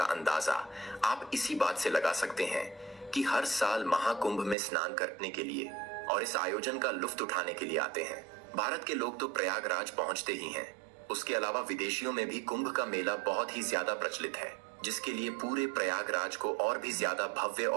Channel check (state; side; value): drops out; left; at 4.5 s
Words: अंदाजा आप इसी बात से लगा सकते हैं कि हर साल महाकुंभ में स्नान करने के लिए और इस आयोजन का लुत्फ उठाने के लिए आते हैं। भारत के लोग तो प्रयागराज पहुंचते ही हैं। उसके अलावा विदेशियों में भी कुंभ का मेला बहुत ही ज्यादा प्रचलित है, जिसके लिए पूरे प्रयागराज को और भी ज्यादा भव्य